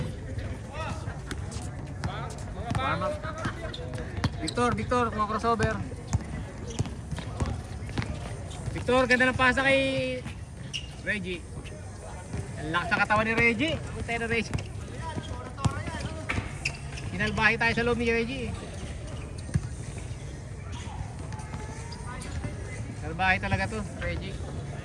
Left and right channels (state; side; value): identical; both; correlation 1.00